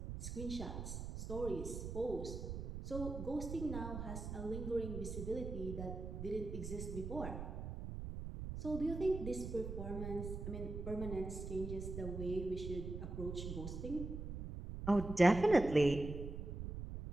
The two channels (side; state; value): right; noise; rumble, 6 dB below the sound